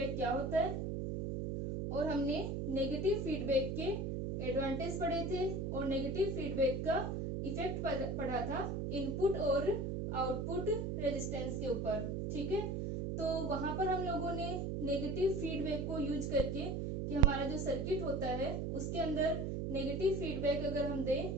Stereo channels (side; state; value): right; noise; hum, 2 dB below the sound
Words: क्या होता है, और हमने नेगेटिव फीडबैक के एडवांटेज पढ़े थे और नेगेटिव फीडबैक का इफेक्ट पढ़ा था इनपुट और आउटपुट रेजिस्टेंस के ऊपर। ठीक है, तो वहां पर हम लोगों ने नेगेटिव फीडबैक को यूज करके कि हमारा जो सर्किट होता है उसके अंदर नेगेटिव फीडबैक अगर हम